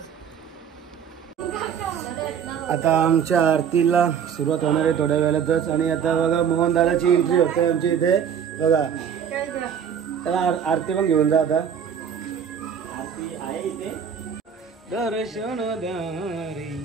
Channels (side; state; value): left; quieter; 7.8 dB